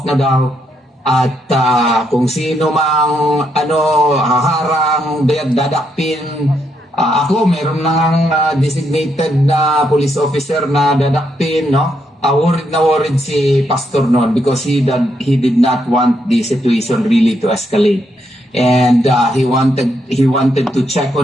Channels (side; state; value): both; normal; correlation 0.78